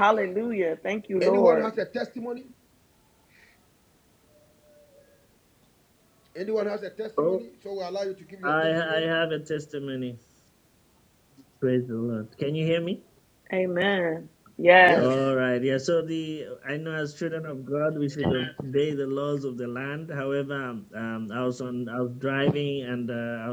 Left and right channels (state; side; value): identical; both; correlation 1.00